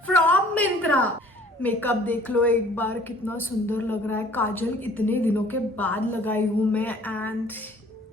from Myntra. Makeup देख लो एक बार, कितना सुंदर लग रहा है. काजल इतने दिनों के बाद लगाई हूँ मैं and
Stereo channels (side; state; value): both; normal; correlation 0.53